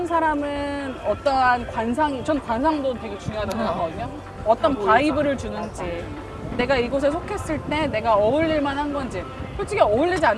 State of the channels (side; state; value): both; identical; correlation 1.00